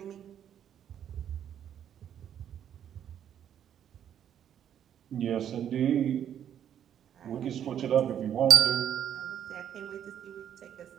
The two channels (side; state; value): left; quieter; 9.6 dB